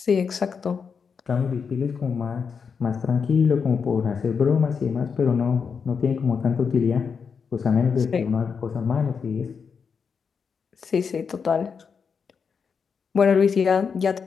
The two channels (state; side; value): quieter; right; 6.0 dB